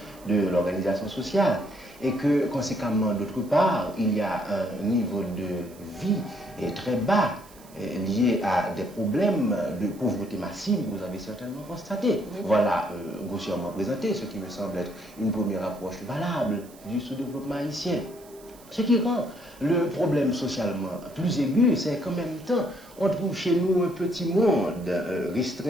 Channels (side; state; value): right; noise; hiss, 24 dB below the sound